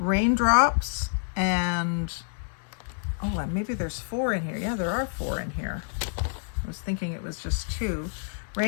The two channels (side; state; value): right; silent; 59 dB below the other